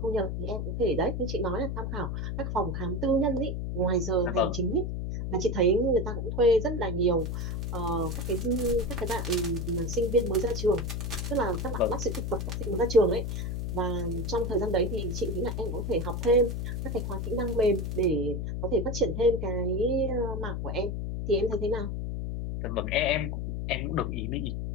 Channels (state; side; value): noise; left; hum, 3 dB below the sound